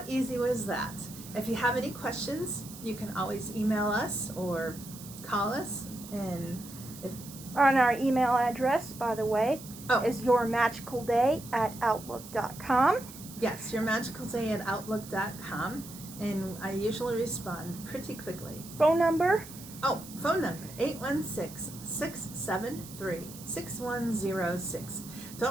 easy was that? If you have any questions, you can always email us or call us. And on our email address, by the way, is yourmagicalday@outlook.com. Yes, yourmagicalday@outlook.com. And I usually respond pretty quickly. Phone number? Phone number, 816-673-6106.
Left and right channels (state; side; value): noise; right; hiss, 15 dB below the sound